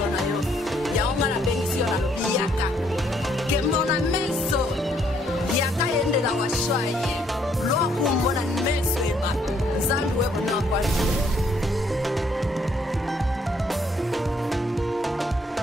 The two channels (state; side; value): normal; both; correlation 0.68